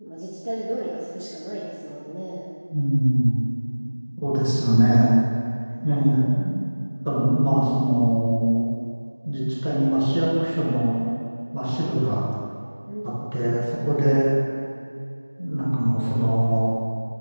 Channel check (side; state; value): both; inverted; correlation -1.00